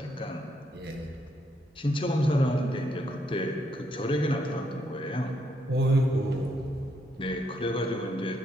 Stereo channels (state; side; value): normal; both; correlation 0.76